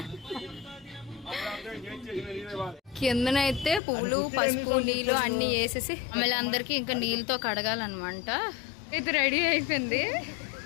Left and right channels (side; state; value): right; drops out; at 3.8 s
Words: కిందనైతే పువ్వులు పసుపు నీళ్ళు అన్ని వేసేసి మళ్ళీ అందరికి ఇంకా నీళ్ళతో కడగాలన్నమాట. ఇది రెడీ అయిపోయింది.